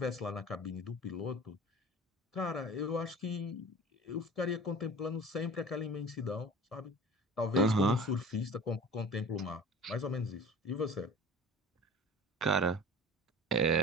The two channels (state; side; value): normal; both; correlation 0.40